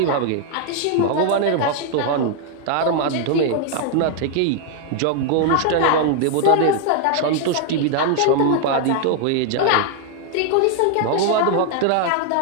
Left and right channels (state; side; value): different; both; correlation 0.00